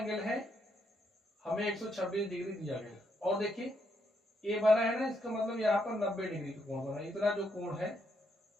है हमें 126 डिग्री दिया गया। और देखिए ये बना है ना, इसका मतलब यहाँ पर 90 डिग्री का कोण बना है, इतना जो कोण है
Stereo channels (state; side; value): normal; both; correlation 0.77